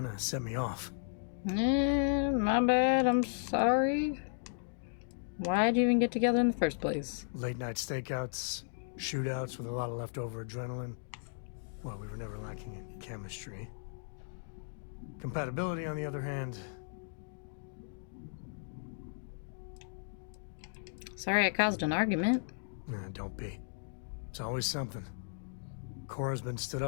of set me off. My bad. I'm sorry. Why'd you even get together in the first place? Late night stakeouts, shootouts with a lot of leftover adrenaline. Well, we were never lacking in chemistry. Compatibility, on the other hand... Sorry I caused an argument. Nah, don't be. It's always something. Cora's been stood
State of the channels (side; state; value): right; silent; digital silence